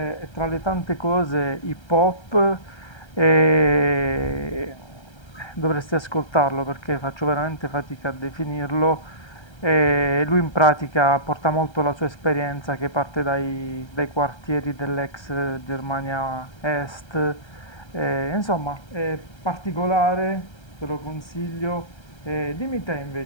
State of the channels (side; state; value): right; late; 1.3 ms